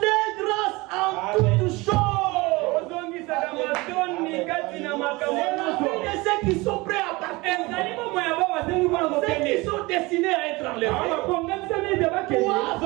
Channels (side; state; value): left; quieter; 23.1 dB